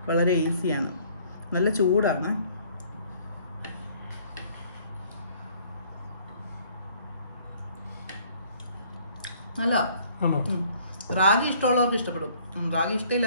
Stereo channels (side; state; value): both; inverted; correlation -0.59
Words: വളരെ ഈസിയാണ്. നല്ല ചൂടാണ്. നല്ല റാഗി ഇഷ്ടമുള്ളവർക്ക് ഇഷ്ടപ്പെടും, റാഗി